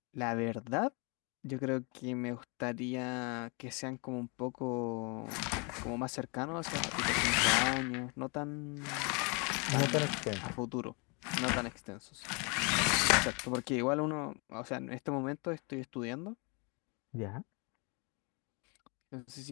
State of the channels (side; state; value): right; quieter; 31.9 dB